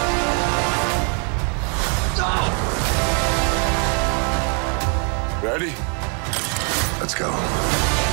Ready? Let's go.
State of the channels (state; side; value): quieter; left; 39.0 dB